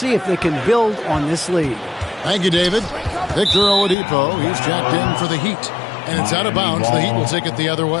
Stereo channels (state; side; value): drops out; right; at 4.0 s